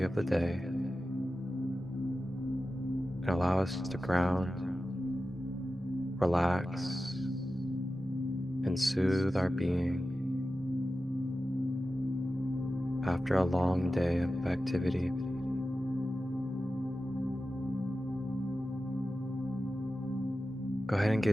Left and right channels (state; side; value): normal; both; correlation 0.93